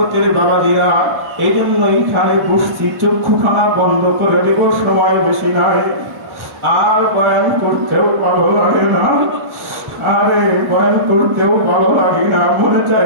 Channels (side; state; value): left; late; 1.1 ms